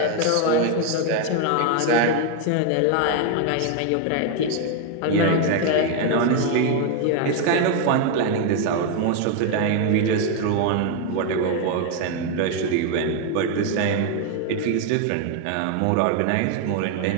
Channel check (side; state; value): both; different; correlation 0.01